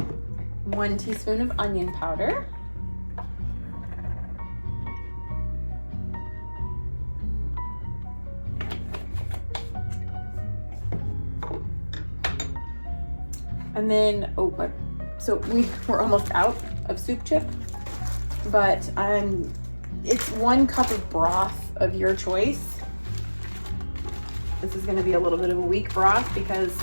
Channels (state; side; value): inverted; both; correlation -1.00